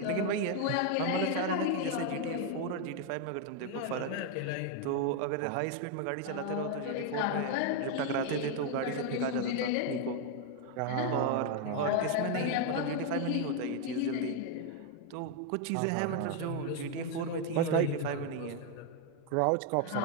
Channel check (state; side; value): different; both; correlation 0.01